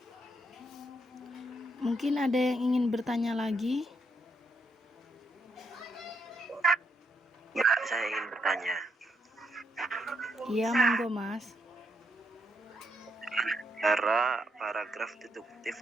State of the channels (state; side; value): normal; both; correlation 0.78